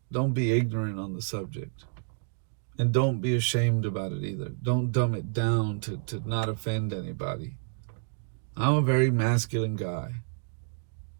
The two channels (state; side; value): silent; left; digital silence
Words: Don't be ignorant on the subject. And don't be ashamed about it either. Don't dumb it down to not offend anybody. I'm a very masculine guy.